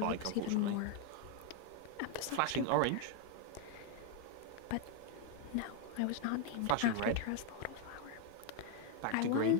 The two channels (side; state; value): both; different; correlation 0.01